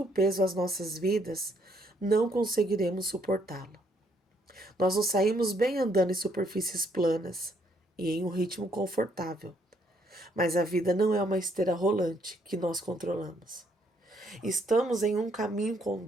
peso às nossas vidas, não conseguiremos suportá-lo. Nós nos saímos bem andando em superfícies planas e em um ritmo confortável, mas a vida não é uma esteira rolante que nós controlamos. Estamos em um caminho com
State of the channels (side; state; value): both; normal; correlation 0.70